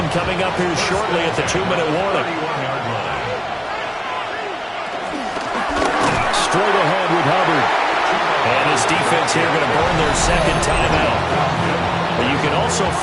coming up here shortly at the 2-minute warning. Straight ahead with Hubbard. And his defense here going to burn their second timeout. But you can also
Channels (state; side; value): identical; both; correlation 1.00